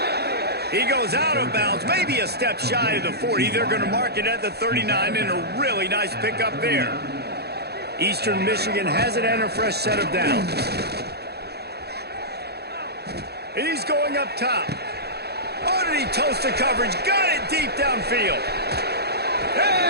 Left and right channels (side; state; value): left; late; 0.47 ms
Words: He goes out of bounds, maybe a step shy of the 40. They're going to mark it at the 39, and a really nice pickup there. Eastern Michigan has it and a fresh set of downs. He's going up top. Oh, did he toast the coverage? Got it deep downfield.